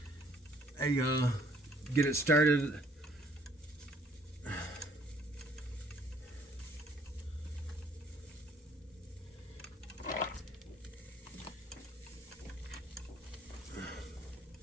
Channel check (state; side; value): normal; both; correlation 0.62